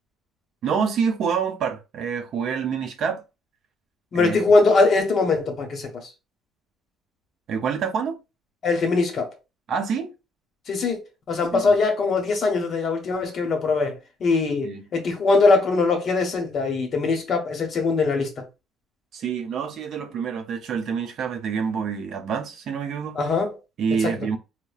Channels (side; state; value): both; normal; correlation 0.70